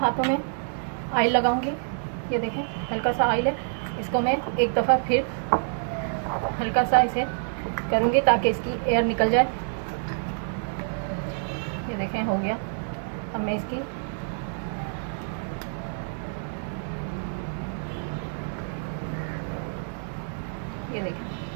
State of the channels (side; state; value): left; silent; digital silence